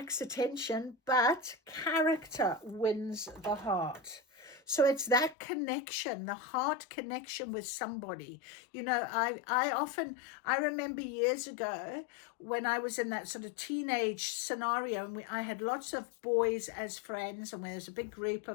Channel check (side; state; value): right; drops out; at 5.4 s